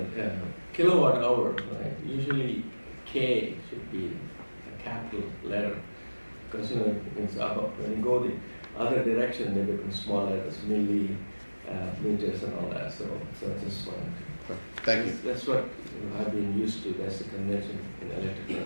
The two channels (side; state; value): both; inverted; correlation -1.00